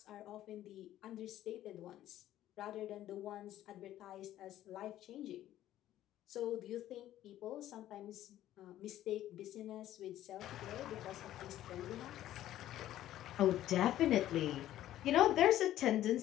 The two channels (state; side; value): quieter; right; 13.1 dB